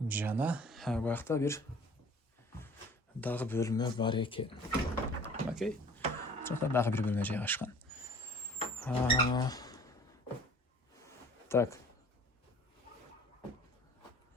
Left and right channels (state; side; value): normal; both; correlation 0.49